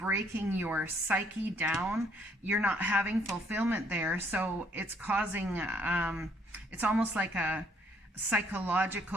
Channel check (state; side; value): normal; both; correlation 0.65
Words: your psyche down. You're not having fulfillment there. So it's causing, it's almost like a